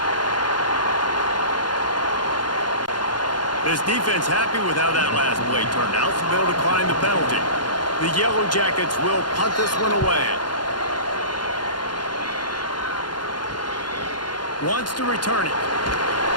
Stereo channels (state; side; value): late; right; 0.71 ms